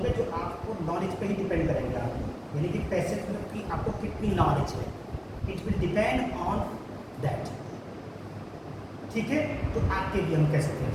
जो आपको नॉलेज पे ही डिपेंड करेंगे, आप यानी कि पैसे की आपको कितनी नॉलेज है, it will depend on that, ठीक है? तो आपके लिए हम कह सकते हैं।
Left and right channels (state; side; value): identical; both; correlation 1.00